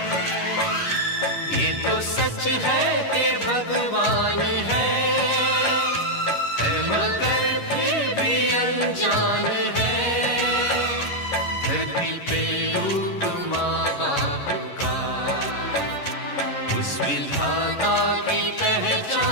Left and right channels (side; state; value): right; late; 11 ms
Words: ये तो सच है कि भगवान है मगर फिर भी अनजान है, धरती पे रूप माँ बाप का उस विधाता की